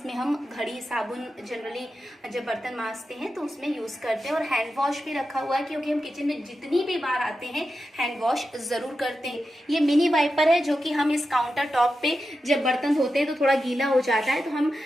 हम घड़ी साबुन जनरली जब बर्तन मांजते हैं तो उसमें यूज़ करते हैं, और हैंड वॉश भी रखा हुआ है क्योंकि हम किचन में जितनी भी बार आते हैं हैंड वॉश ज़रूर करते हैं। ये मिनी वाइपर है जो कि हम इस काउंटर टॉप पे जब बर्तन धोते हैं तो थोड़ा गीला हो जाता है, तो हम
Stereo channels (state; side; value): normal; both; correlation 0.90